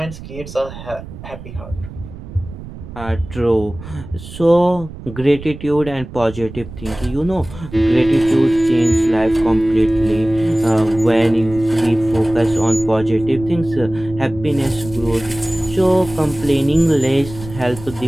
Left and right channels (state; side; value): noise; right; rumble, 14 dB below the sound